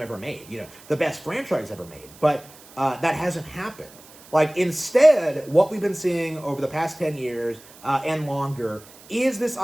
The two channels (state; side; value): noise; right; hiss, 22 dB below the sound